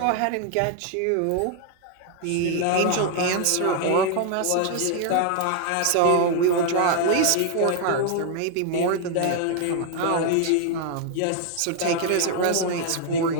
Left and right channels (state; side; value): different; both; correlation 0.00